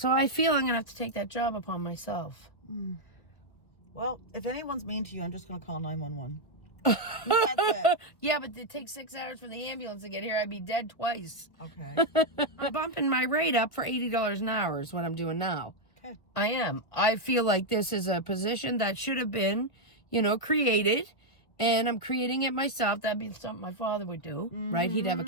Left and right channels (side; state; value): right; late; 1.8 ms